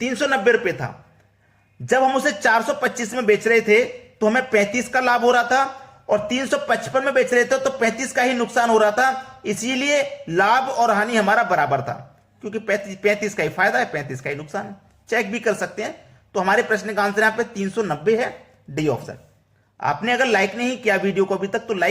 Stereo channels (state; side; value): identical; both; correlation 1.00